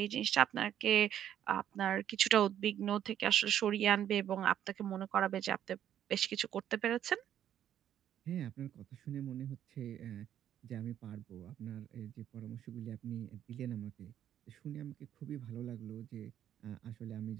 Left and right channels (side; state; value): left; quieter; 10.5 dB